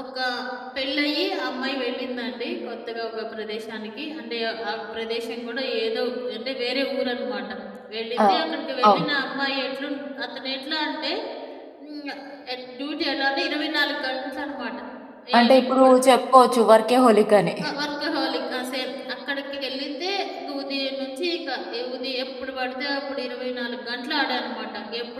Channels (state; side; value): identical; both; correlation 1.00